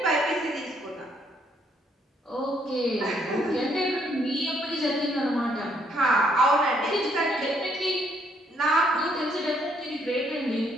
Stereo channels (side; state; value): both; normal; correlation 0.69